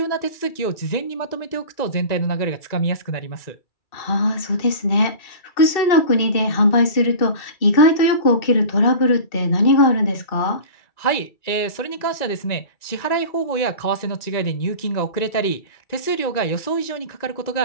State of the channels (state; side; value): late; right; 2.3 ms